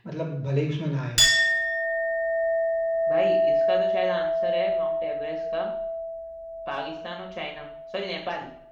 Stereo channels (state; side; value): identical; both; correlation 1.00